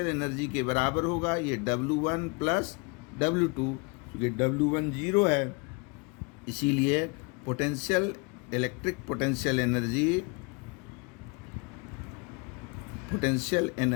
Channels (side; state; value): right; quieter; 31.3 dB